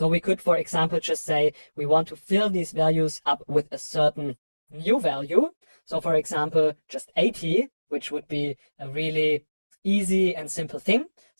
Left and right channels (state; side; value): inverted; both; correlation -1.00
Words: we could, for example, just say we want to fill these values up with a certain new value. So for example, just 80, which would be a really easy and simple thing.